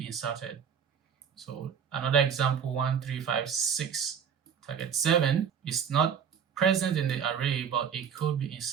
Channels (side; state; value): left; quieter; 7.5 dB